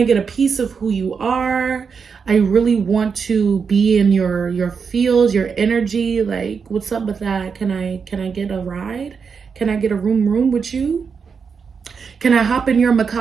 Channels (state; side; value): quieter; left; 5.9 dB